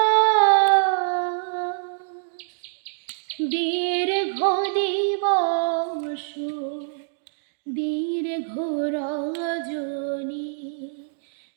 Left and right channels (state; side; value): silent; left; digital silence